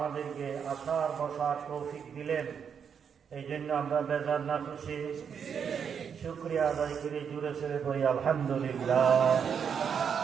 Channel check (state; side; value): quieter; left; 7.2 dB